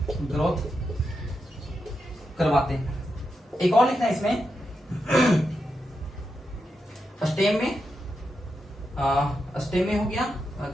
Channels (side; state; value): both; normal; correlation 0.86